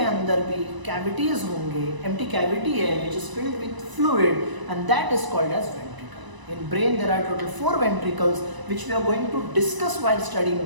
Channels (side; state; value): left; late; 1.0 ms